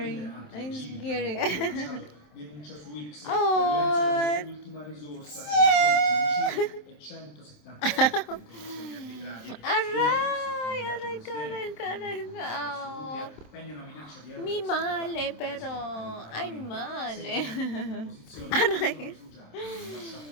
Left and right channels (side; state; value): right; late; 27 ms